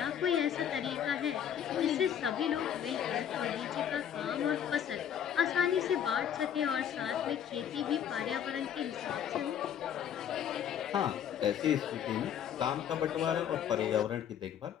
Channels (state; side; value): quieter; right; 9.2 dB